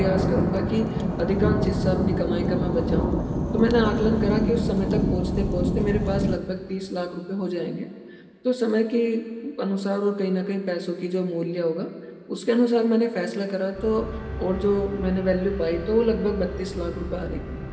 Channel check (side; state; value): both; identical; correlation 1.00